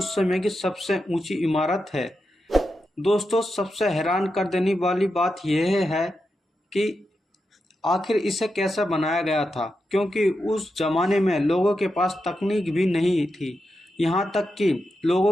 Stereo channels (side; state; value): both; normal; correlation 0.88